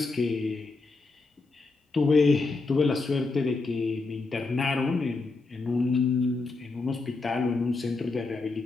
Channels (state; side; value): quieter; right; 3.7 dB